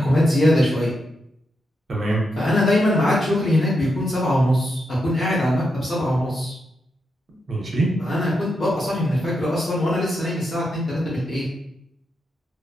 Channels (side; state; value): both; normal; correlation 0.84